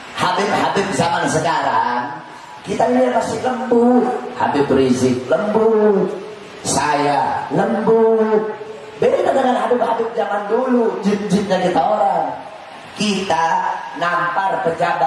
Habib-habib zaman sekarang, kita ini masih lembut. Habib Rizik lembut, saya lembut. Beda dengan Habib-habib zaman dulu, jin-jinnya kita orang. Kita nampar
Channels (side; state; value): both; identical; correlation 1.00